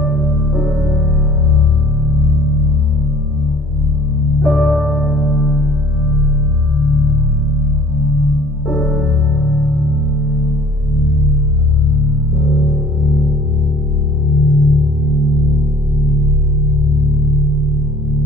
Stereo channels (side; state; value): both; normal; correlation 0.52